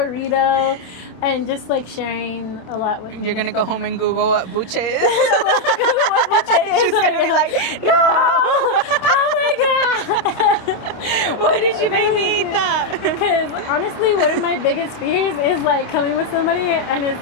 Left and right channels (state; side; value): late; right; 27 ms